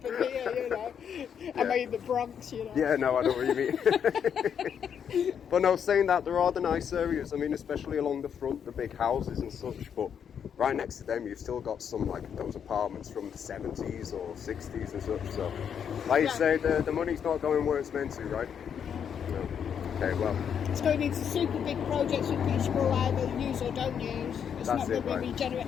here? You know, am I in the Bronx? You know. Yeah, no, I know what you mean. But no, saying that, there are the nice areas. I mean, especially along the front, the big houses and such. But right next to them, you've still got some like those apartments from the 70s or 60s and such. So, like you say, the money's not going where it's meant to, right? No. Okay, well. It's going into super big projects which will either use or don't use. It's not going to be regenerate.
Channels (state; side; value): quieter; right; 7.9 dB